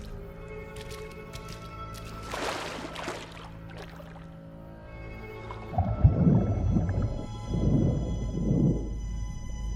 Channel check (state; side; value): identical; both; correlation 1.00